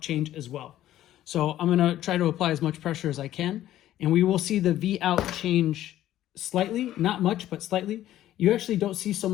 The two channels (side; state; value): right; quieter; 13.2 dB